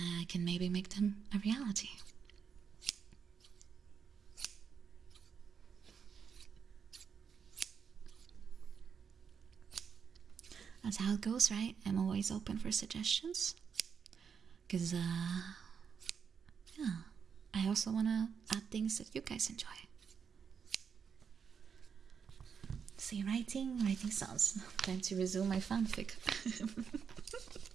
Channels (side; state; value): left; quieter; 6.7 dB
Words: can maybe make them a reality. That's how it goes, right? I'm always open for suggestions. Because, yeah, I also want to add things that you guys enjoy. See, writing sounds. Time to resume my fanfic.